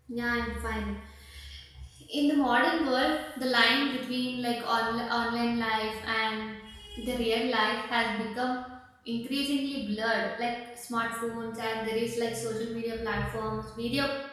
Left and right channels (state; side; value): identical; both; correlation 1.00